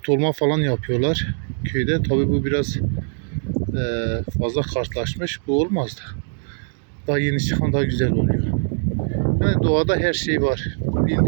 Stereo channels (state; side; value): silent; left; digital silence